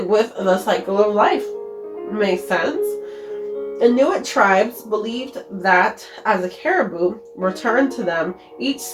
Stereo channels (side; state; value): both; identical; correlation 1.00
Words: with the cycle of life. Makes sense. Inuit tribes believed that as a caribou returned to them each